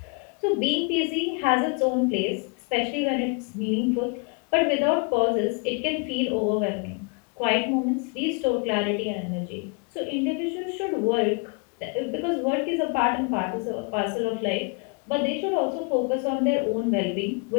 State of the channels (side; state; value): right; quieter; 33.2 dB